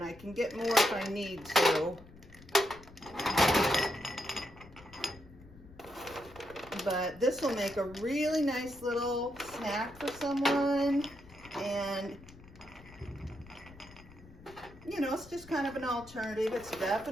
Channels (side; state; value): left; noise; rumble, 21 dB below the sound